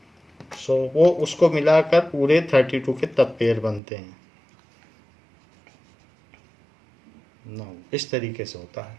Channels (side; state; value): left; drops out; at 3.8 s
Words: सो वो उसको मिलाकर पूरे 32 के तब पेयर बनते हैं. नाउ इस तरीके से होता है.